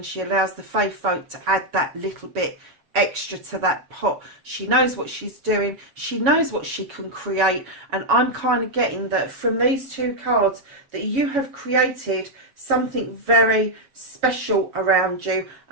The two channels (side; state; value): left; late; 7.1 ms